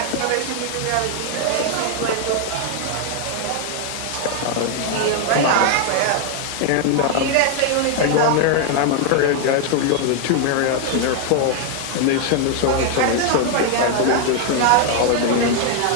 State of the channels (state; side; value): different; both; correlation 0.00